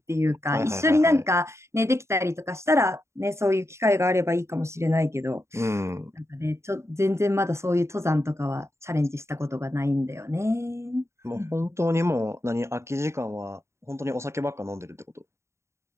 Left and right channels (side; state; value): left; late; 0.13 ms